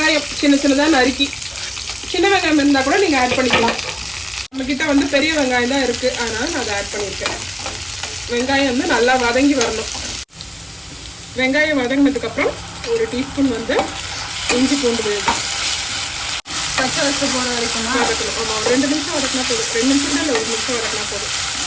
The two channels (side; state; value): both; identical; correlation 1.00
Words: சின்னதா நறுக்கி. சின்ன வெங்காயம் இருந்தா கூட நீங்க ஆட் பண்ணிக்கலாம். நம்ம கிட்ட வந்து பெரிய வெங்காயம் தான் இருக்கு, அதனால நான் அதை ஆட் பண்ணியிருக்கேன். வெங்காயம் வந்து நல்லா வதங்கி வரணும். வெங்காயம் வதங்கினதுக்கு அப்புறம் 1 டீஸ்பூன் வந்து இஞ்சி பூண்டு விழுது. பச்சை வச்சு போகிற வரைக்கும் வதக்கணும். ஆமாம், 2 நிமிஷம் வதக்கினா போதும். 2 நிமிஷம் இல்லை, 1 நிமிஷம் வதக்கினா போதும்.